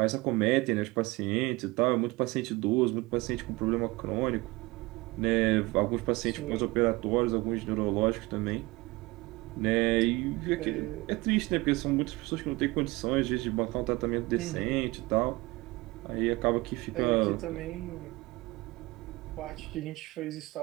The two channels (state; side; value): quieter; left; 22.2 dB